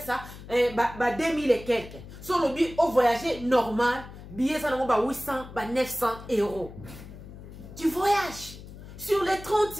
ça 2000 et quelques. Sur le bic au voyager normal, billet ça na 800 900 €. Tu voyages. Sur les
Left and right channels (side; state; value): left; noise; hum, 15 dB below the sound